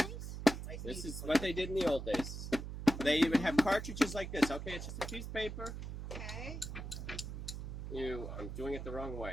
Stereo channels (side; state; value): right; noise; hum, 7 dB below the sound